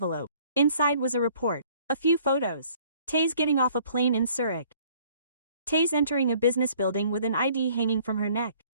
Inside was a report. A few photos. Taze getting off a plane in Zurich. Taze entering a business building with an ID hanging from her neck.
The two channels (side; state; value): both; inverted; correlation -0.57